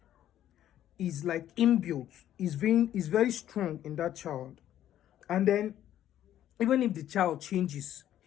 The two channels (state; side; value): quieter; right; 11.7 dB